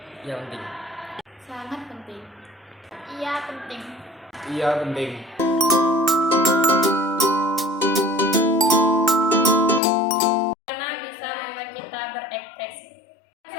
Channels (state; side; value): drops out; right; at 9.8 s